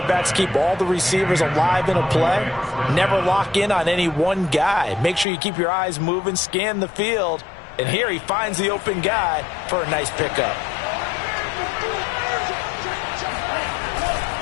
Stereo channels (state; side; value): drops out; right; at 5.2 s